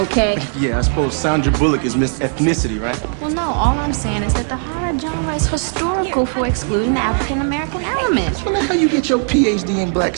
Yeah, I suppose Sandra Bullock is Miss Ethnicity, right? Well, no, all I'm saying is that the horror genre is historical for excluding the African-American element. Well, that's how you get your PhD in black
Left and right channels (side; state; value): left; silent; 57 dB below the other